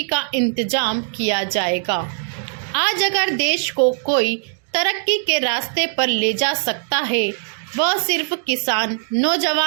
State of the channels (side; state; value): left; silent; digital silence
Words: का इंतजाम किया जाएगा। आज अगर देश को कोई तरक्की के रास्ते पर ले जा सकता है वह सिर्फ किसान,